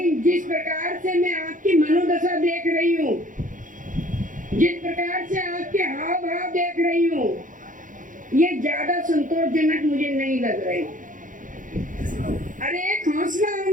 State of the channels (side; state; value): left; late; 0.38 ms